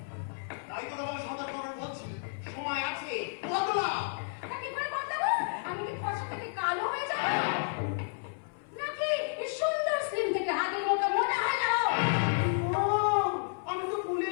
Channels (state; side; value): silent; right; 57 dB below the other